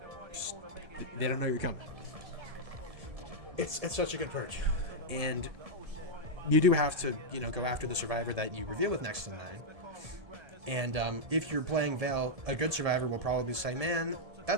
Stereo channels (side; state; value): left; late; 1.7 ms